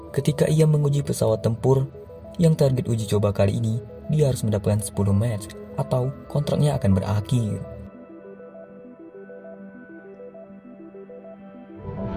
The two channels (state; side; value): identical; both; correlation 1.00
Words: ketika ia menguji pesawat tempur yang target uji coba kali ini dia harus mendapatkan 10 match atau kontraknya akan berakhir.